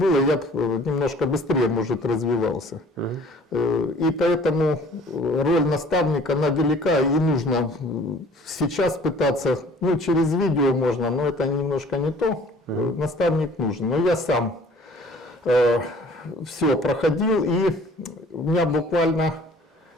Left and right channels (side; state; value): both; normal; correlation 0.52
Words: я бы немножко быстрее, может, развивался. И поэтому роль наставника, она велика, и нужно сейчас пытаться, ну, через видео можно, но это немножко не то. Наставник нужен. Но я сам все проходил, и у меня буквально